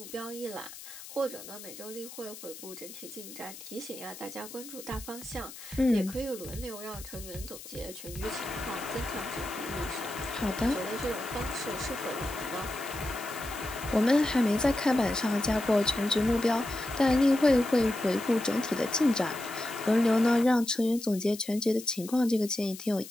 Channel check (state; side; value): noise; left; hiss, 14 dB below the sound